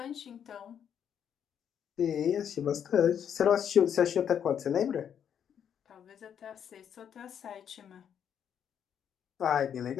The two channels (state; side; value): quieter; right; 8.5 dB